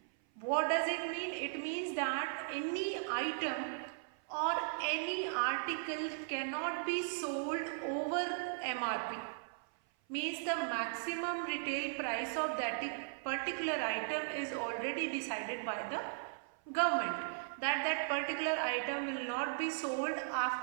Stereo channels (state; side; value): silent; left; 53 dB below the other